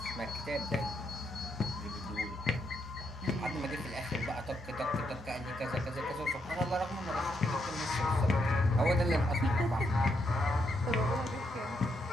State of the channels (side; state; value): both; normal; correlation 0.78